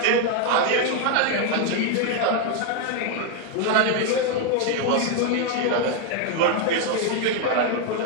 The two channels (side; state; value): both; different; correlation 0.01